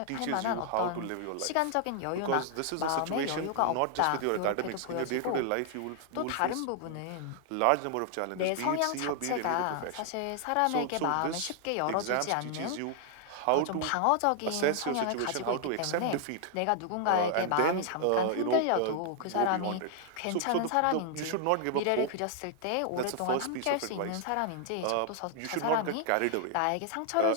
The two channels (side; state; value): both; different; correlation 0.00